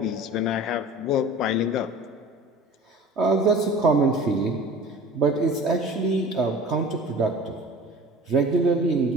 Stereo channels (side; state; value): both; normal; correlation 0.41